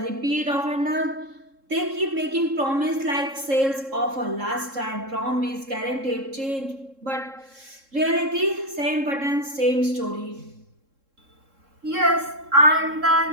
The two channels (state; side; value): late; left; 3.7 ms